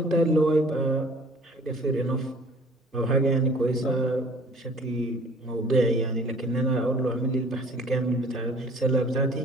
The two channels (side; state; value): both; normal; correlation 0.52